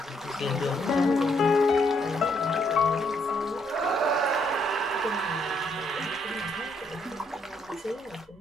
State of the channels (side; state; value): both; normal; correlation 0.72